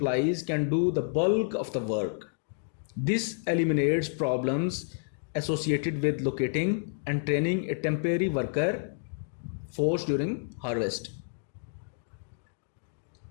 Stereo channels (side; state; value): right; silent; digital silence